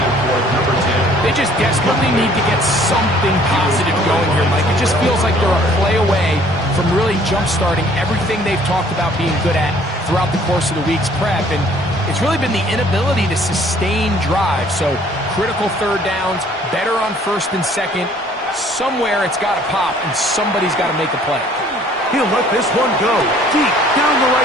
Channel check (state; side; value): normal; both; correlation 0.57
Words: for number 10. They just desperately need to get something positive going here, Mike. It just feels like they're a play away from really jump-starting everything they've talked about being good at throughout the course of the week's prep. And it's really been the inability to sustain drives. So critical third downs, better on first and second. Somewhere it's got to pop, and somebody's got to make a play. He'll let this one go deep down the